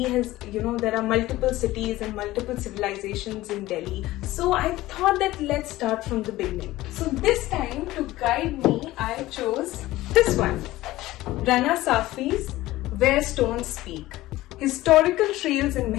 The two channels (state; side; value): quieter; right; 17.1 dB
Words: has, there are multiple cities and multiple civilizations in Delhi. So I thought that let's start from the beginning. So this time to guide me, I chose this one. Rana Safi's Where Stones Speak. Historical trails in